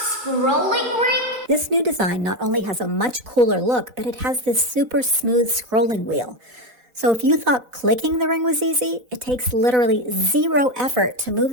ring? This new design not only has a much cooler look, but it has this super smooth scrolling wheel. So if you thought clicking the ring was easy, it takes literally zero effort to move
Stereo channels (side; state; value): left; late; 4.0 ms